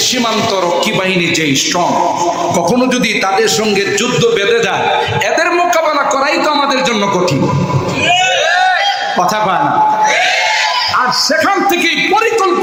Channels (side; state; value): both; identical; correlation 1.00